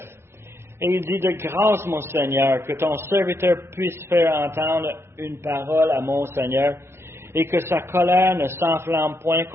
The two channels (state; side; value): late; left; 0.12 ms